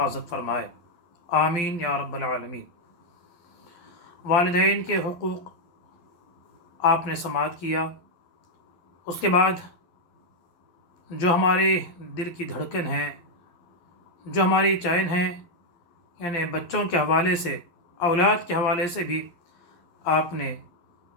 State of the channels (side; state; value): right; late; 12 ms